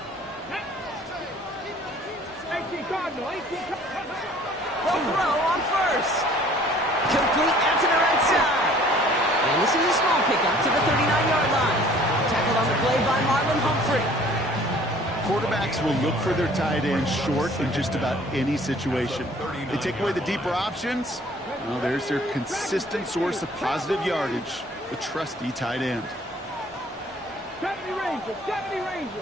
Cardinal, 18 Cardinal. They'll throw on first. Complete out to the right side. And this is a small pickup to the 39-yard line. Tackled on the play by Marlon Humphrey. Quarterbacks will look for their tight end short in just about any situation. They take away the deeper options. Well, there's their consistent source of positive yardage, the trusty tight end. 70 Rangers, 70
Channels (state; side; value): normal; both; correlation 0.54